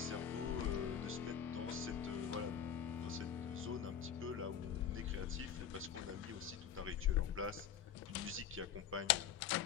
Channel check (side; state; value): right; quieter; 8.7 dB